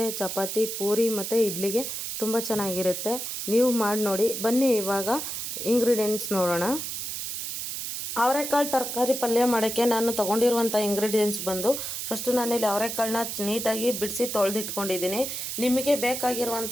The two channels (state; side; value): noise; right; hiss, 5 dB below the sound